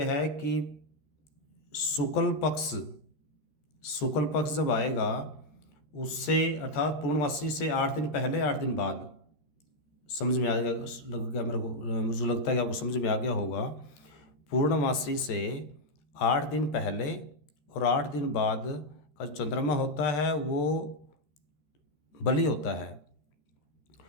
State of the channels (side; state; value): right; late; 14 ms